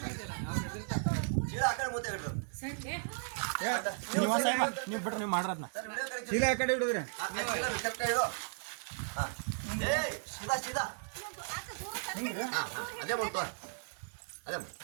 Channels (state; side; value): silent; left; digital silence